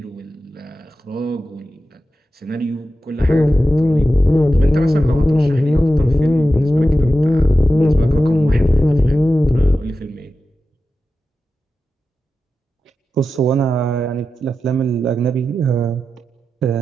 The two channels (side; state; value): both; normal; correlation 0.92